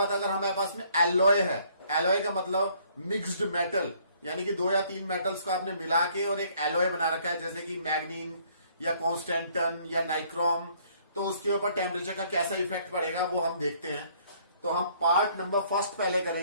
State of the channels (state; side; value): inverted; both; correlation -0.62